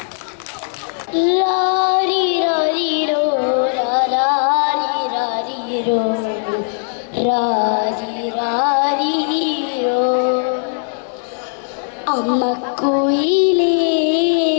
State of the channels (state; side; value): silent; right; digital silence